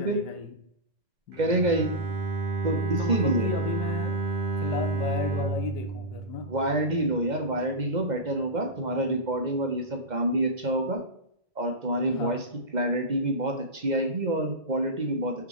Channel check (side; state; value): left; late; 2.1 ms